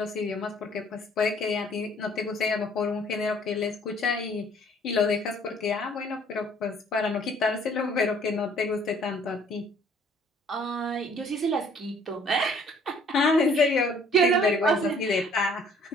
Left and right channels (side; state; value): both; normal; correlation 0.58